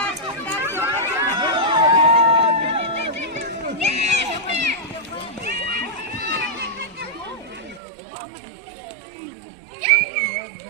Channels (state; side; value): drops out; left; at 7.8 s